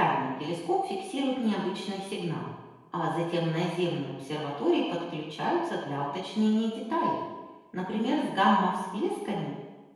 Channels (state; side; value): identical; both; correlation 1.00